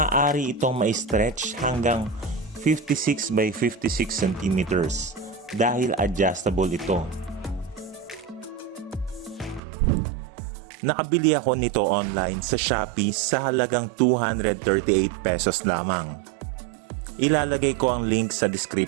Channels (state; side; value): drops out; left; at 9.6 s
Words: itong ma-stretch hanggang 56 by 56 centimeters dahil adjustable ito. Nakabili ako nito online sa Shopee sa halagang 238 pesos lamang. Ilalagay ko ang link sa